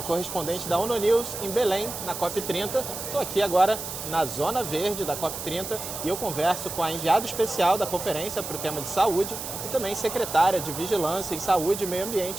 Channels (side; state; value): right; noise; hiss, 7 dB below the sound